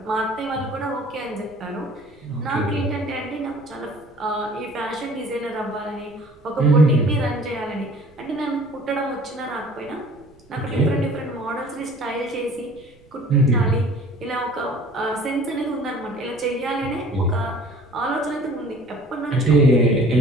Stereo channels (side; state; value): right; noise; rumble, 28 dB below the sound